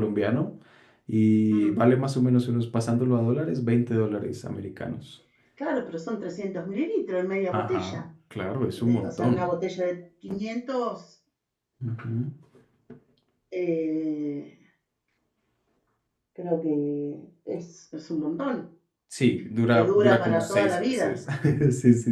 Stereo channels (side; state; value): both; identical; correlation 1.00